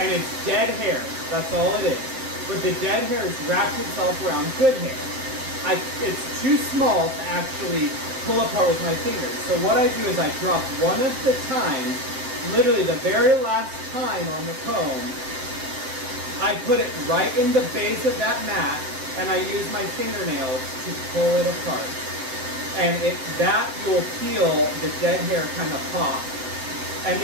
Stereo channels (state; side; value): late; left; 7.7 ms